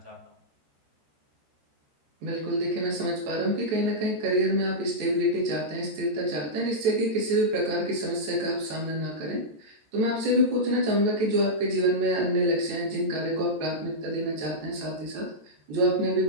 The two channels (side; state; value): left; late; 14 ms